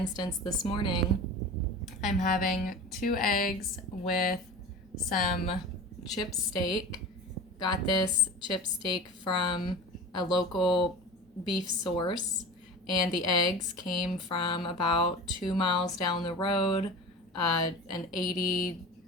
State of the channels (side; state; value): both; normal; correlation 0.34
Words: this morning I'm having 2 eggs with some chip steak. Got this chip steak from a local beef source, and the eggs came from about 2 miles down the road. An